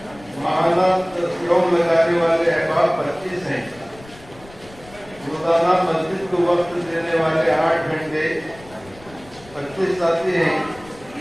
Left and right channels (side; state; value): left; noise; rumble, 22 dB below the sound